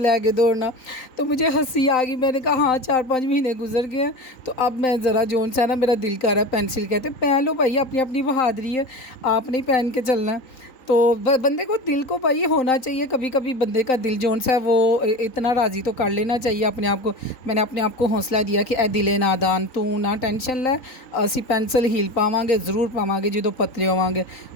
दौड़ना। तो मुझे हंसी आ गई। मैंने कहा हाँ 4-5 महीने गुजर गए हैं, तो अब मैं ज़रा जोन सा ना मेरा दिल कर रहा है पेंसिल। कहते पहन लो भाई, अपनी अपनी बहादुरी है, आपने ही पहन के चलना है। तो बंदे को दिल को भाई होना चाहिए। कभी कभी बंदे का दिल जोन सा है वो इतना राज़ी तो कर लेना चाहिए अपने आप को। मैंने अपने आप को हौसला दिया कि ए दिले नादान तू ना टेंशन लै, असी पेंसिल हील पावांगे ज़रूर पावांगे जो पतले होवांगे।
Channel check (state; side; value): late; right; 3.9 ms